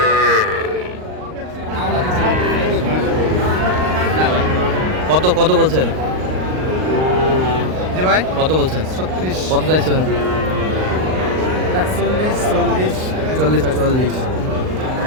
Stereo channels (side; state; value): left; late; 38 ms